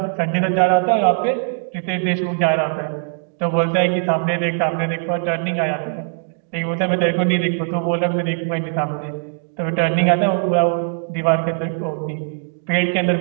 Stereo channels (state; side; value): silent; left; digital silence